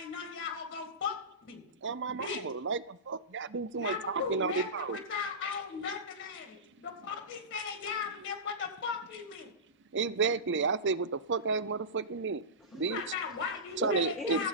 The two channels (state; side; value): normal; both; correlation -0.19